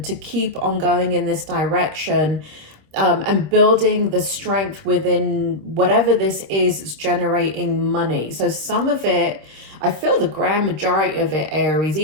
to keep on going in this direction. And building the strength within whatever this is generating money. So some of it, I feel the grand majority of it, Aries,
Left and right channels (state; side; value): late; left; 26 ms